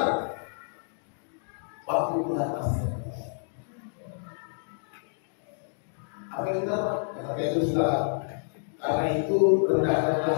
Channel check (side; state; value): right; silent; digital silence